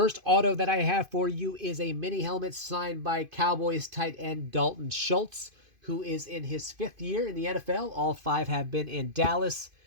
auto that I have for you is a mini helmet signed by Cowboys tight end Dalton Schultz, who is in his 5th year in the NFL. All 5 have been in Dallas.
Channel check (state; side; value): late; left; 2.5 ms